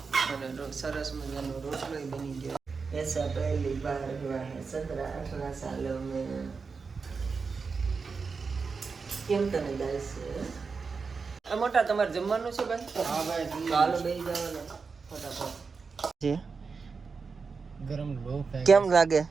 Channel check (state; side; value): quieter; left; 5.0 dB